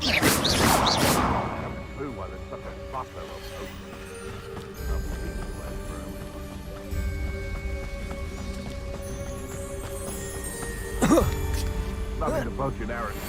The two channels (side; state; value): both; identical; correlation 1.00